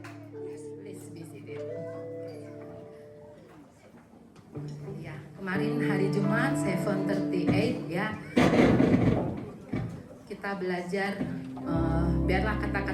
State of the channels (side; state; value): both; identical; correlation 1.00